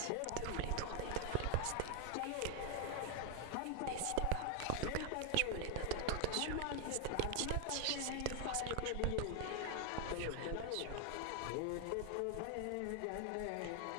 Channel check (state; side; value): different; both; correlation 0.00